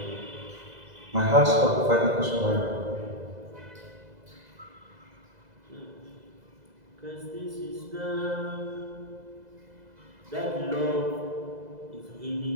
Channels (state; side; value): late; left; 2.0 ms